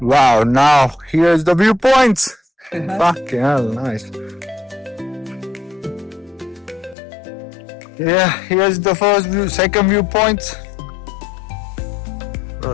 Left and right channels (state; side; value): drops out; right; at 7.0 s